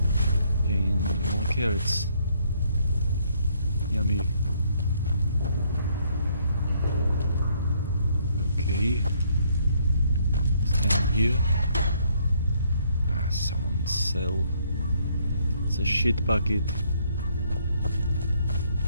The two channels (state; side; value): inverted; both; correlation -0.68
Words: And more carrots. Yummy. Okay. It's down here. Ah, someone sell. It's a shit bucket.